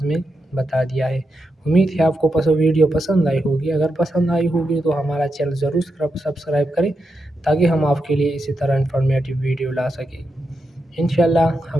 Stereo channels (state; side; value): normal; both; correlation 0.86